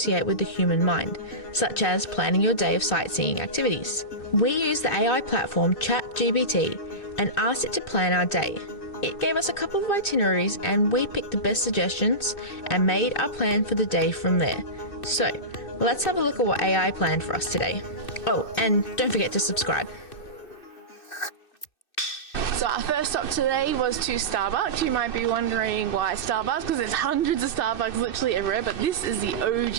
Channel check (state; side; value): late; right; 2.6 ms